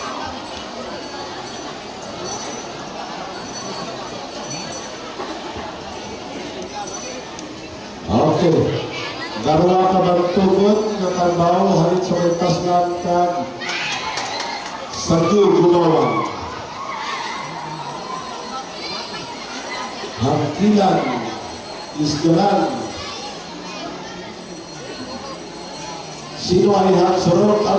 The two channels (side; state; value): both; identical; correlation 1.00